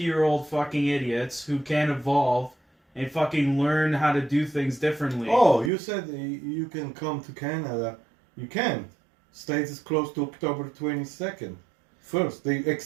fucking idiots who can't evolve and fucking learn how to do things differently. Oh, you said you can come to Canada. You can't. States is closed to October 22nd. First, they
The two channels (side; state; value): left; drops out; at 5.7 s